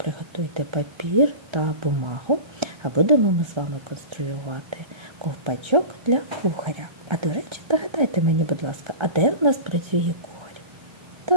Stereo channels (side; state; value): left; late; 1.3 ms